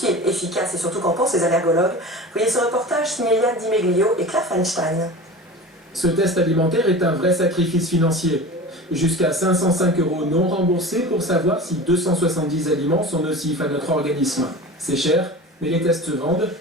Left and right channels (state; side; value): normal; both; correlation 0.34